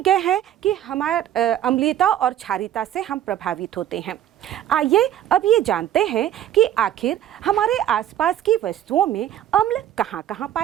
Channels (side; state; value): left; quieter; 11.4 dB